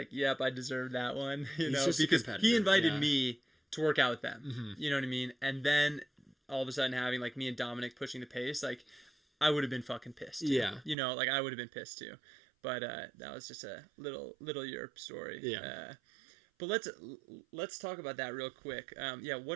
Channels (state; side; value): drops out; left; at 11.0 s